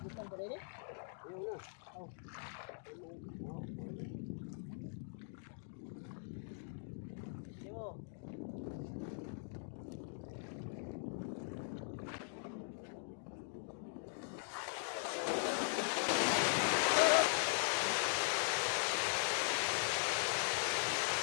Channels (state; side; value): silent; right; digital silence